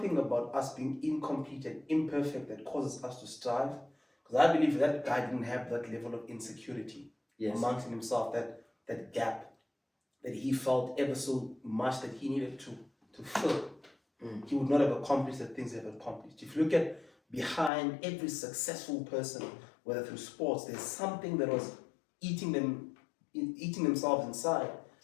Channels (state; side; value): drops out; right; at 17.7 s